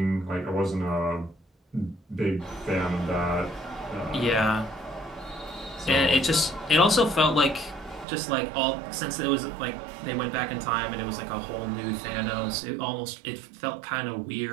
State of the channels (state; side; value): drops out; left; at 8.1 s